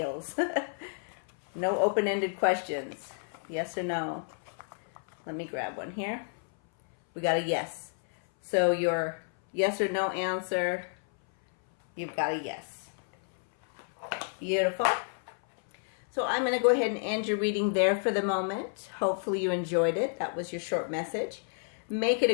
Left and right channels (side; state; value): right; silent; 58 dB below the other